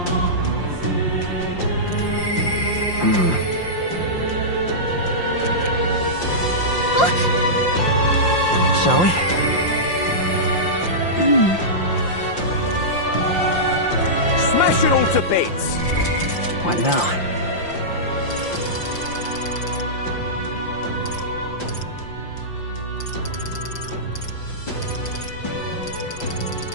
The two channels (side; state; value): right; late; 5.7 ms